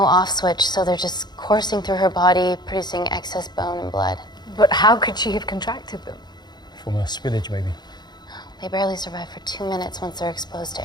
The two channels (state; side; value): late; right; 0.21 ms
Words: off switch, so they're just coursing through her body, producing excess bone and blood. But how could she have contracted them? From a spillage, maybe. They barely survive for 2 minutes once they're exposed